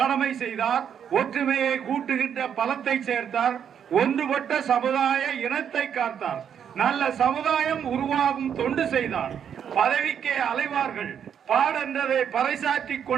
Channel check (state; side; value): quieter; left; 8.3 dB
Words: செய்தார், ஒற்றுமையை கூட்டுகின்ற பலத்தை சேர்த்தார், ஒன்றுபட்ட சமுதாய இனத்தை காத்தார், நல்ல சமுதாயம் உருவாகும் தொண்டு செய்தார், பதவிக்கே அலைவார்கள், பாடென்றதை பறைசாற்றி